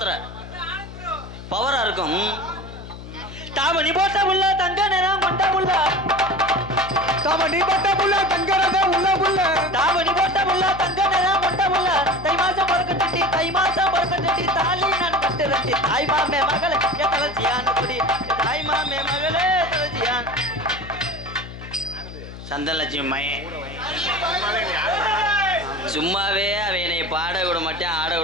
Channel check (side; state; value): left; noise; hum, 13 dB below the sound